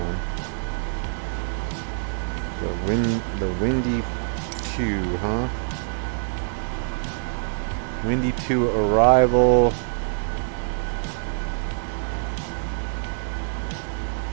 The Windy 2, huh? Windy 2 arrival.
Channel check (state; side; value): silent; left; digital silence